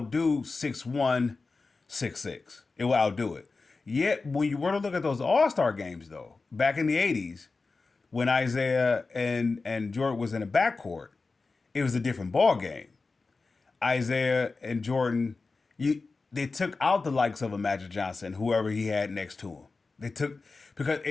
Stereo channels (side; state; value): right; quieter; 4.0 dB